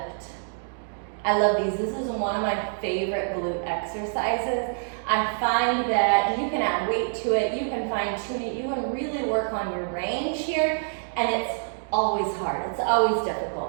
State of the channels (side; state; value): left; silent; digital silence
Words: I love these. This is one of my favorite glute exercises. I find that you can add weight to it, you can fine tune it, you can really work on your range here, and it's always hard, it's always